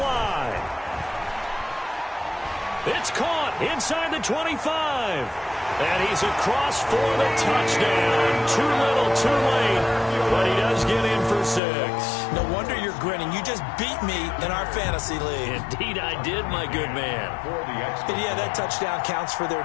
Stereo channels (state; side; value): drops out; right; at 11.6 s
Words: It's caught inside the 25. And he's across for the touchdown. Too little, too late. But he does get in for 6. No wonder you're grinning. You just beat me in our fantasy league. Indeed I did, my good man. And yeah, that touchdown counts for